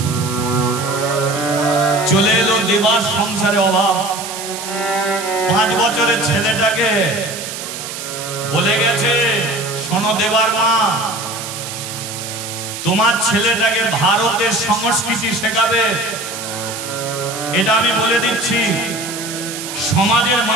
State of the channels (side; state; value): right; noise; hiss, 8 dB below the sound